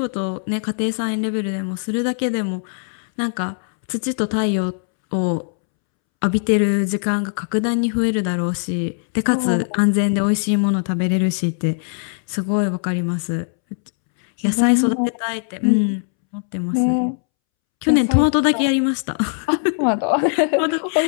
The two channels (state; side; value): silent; right; 66 dB below the other